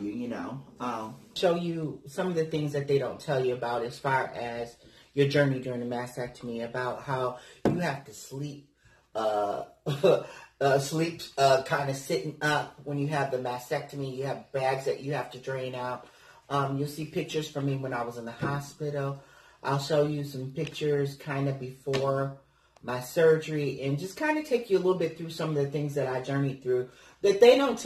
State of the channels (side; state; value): both; identical; correlation 1.00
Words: you know. Show you some of the things that they don't tell you about as far as your journey during the mastectomy, about how you have to sleep, kind of sitting up when you have the mastectomy. You have bags that you have to drain out. You'll see pictures from me when I was in the hospital. I'll show you some pictures kind of before my surgery, and just kind of take you a little bit through some of the things that I journeyed through that they don't